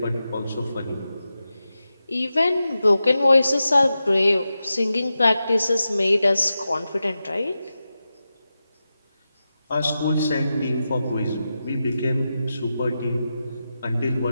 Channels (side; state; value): both; inverted; correlation -0.91